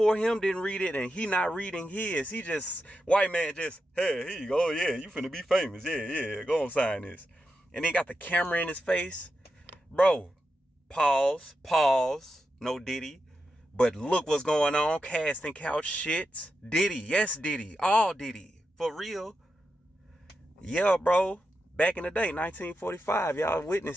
him didn't read it, and he not reading his. He just, white man just, hey, here you go. Yeah, you finna be famous. Yeah, go on, sign this. And he got the camera in his face. Bro, pause, no Diddy. But look what's going on, casting couch shit. Diddy, yes Diddy, all Diddy, for real. Yeah, bro, back in the day, 1945, y'all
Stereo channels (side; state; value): both; normal; correlation 0.88